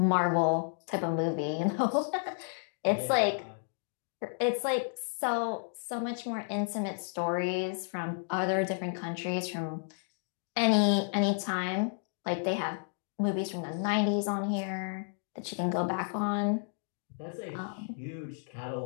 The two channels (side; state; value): right; silent; digital silence